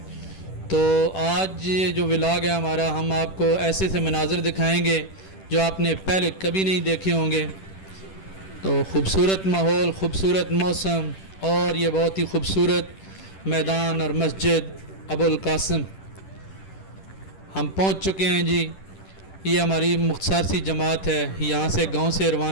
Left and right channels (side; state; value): right; late; 10 ms